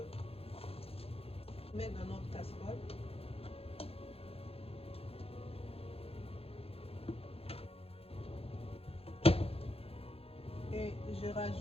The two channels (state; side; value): late; right; 0.28 ms